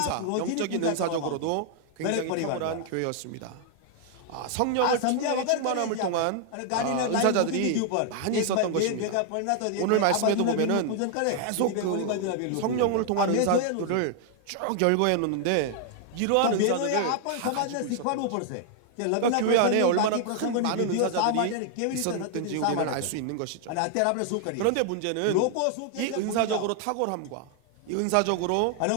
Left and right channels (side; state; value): both; different; correlation 0.00